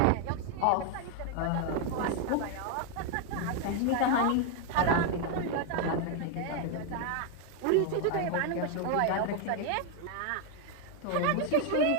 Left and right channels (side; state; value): both; different; correlation 0.00